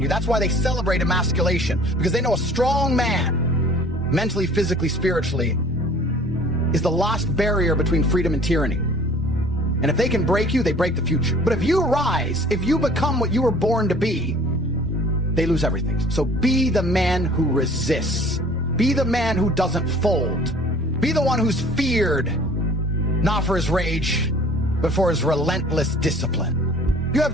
you. That's why they celebrate emasculation, because they know a strong man, mentally, physically, spiritually, is the last barrier between freedom and tyranny. And if they can break you, they break the future. But if you rise, if you become what you were born to be, they lose everything. So be the man who resists. Be the man who doesn't fold. Be the one who's feared, not for his rage, but for his relentless discipline. You have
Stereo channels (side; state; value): both; normal; correlation 0.50